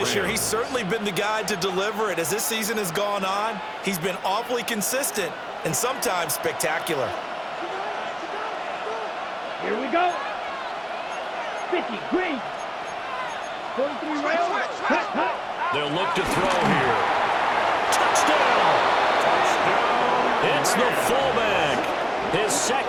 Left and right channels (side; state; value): both; identical; correlation 1.00